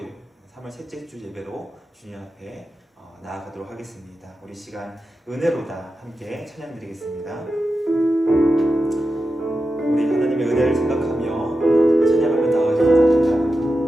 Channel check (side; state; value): both; normal; correlation 0.91